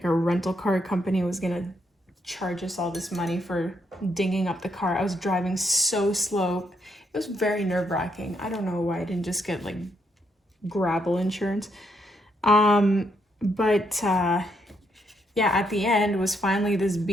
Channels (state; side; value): normal; both; correlation 0.75